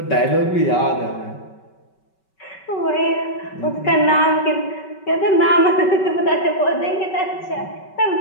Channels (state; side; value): late; right; 5.3 ms